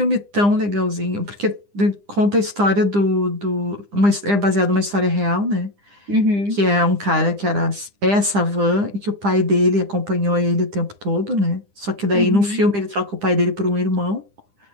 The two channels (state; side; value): late; left; 9.9 ms